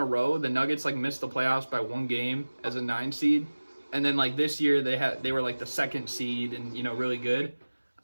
row, the Nuggets, like, missed the playoffs by 1 game as a 9 seed. And then, like, this year, they were, like, the 2nd seed and, you know, really good.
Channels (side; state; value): both; inverted; correlation -1.00